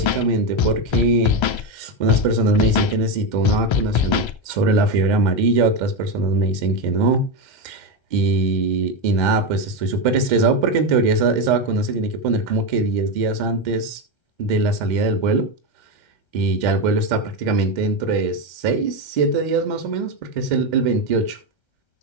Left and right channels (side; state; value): right; late; 1.3 ms